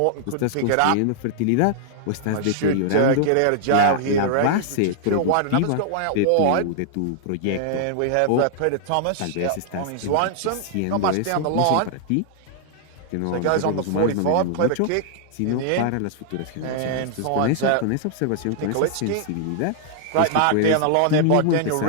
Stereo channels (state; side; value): different; both; correlation -0.01